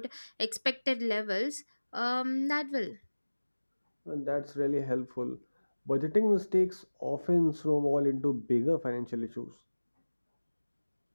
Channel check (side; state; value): both; inverted; correlation -1.00